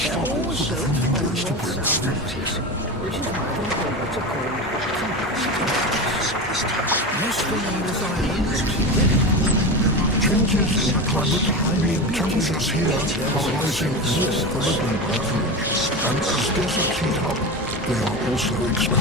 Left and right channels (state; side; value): normal; both; correlation 0.23